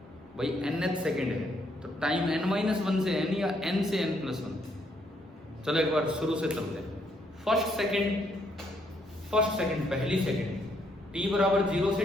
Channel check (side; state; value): both; normal; correlation 0.72